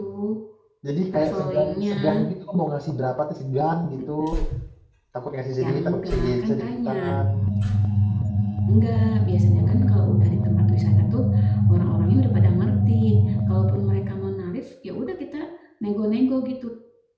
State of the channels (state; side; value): identical; both; correlation 1.00